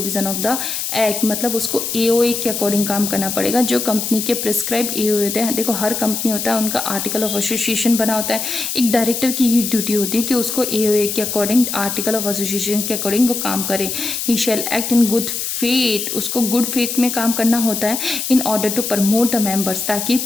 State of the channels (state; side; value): noise; left; hiss, 3 dB below the sound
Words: of the act. मतलब उसको एओए के अकॉर्डिंग काम करना पड़ेगा, जो कंपनी के प्रिस्क्राइब एओए होते हैं। देखो, हर कंपनी होता है, उनका आर्टिकल ऑफ एसोसिएशन बना होता है। एक डायरेक्टर की ये ड्यूटी होती है कि उसको एओए के अकॉर्डिंग, आर्टिकल ऑफ एसोसिएशन के अकॉर्डिंग वो काम करे। He shall act in good faith, उसको गुड फेथ में काम करना होता है। In order to promote the members, ताकि